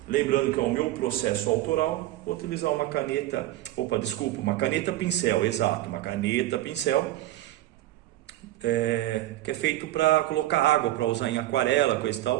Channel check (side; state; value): left; quieter; 15.4 dB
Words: Lembrando que é o meu processo autoral, vou utilizar uma caneta, uma caneta pincel, exato, uma caneta pincel, que é feito para colocar água, para usar em aquarela, coisa e